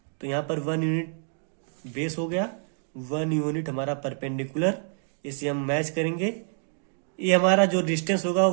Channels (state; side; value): silent; left; digital silence